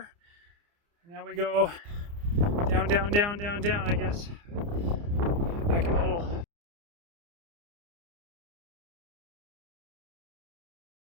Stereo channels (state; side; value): late; left; 29 ms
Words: And now we go down, down, down, down, down, I guess. Back in the hole.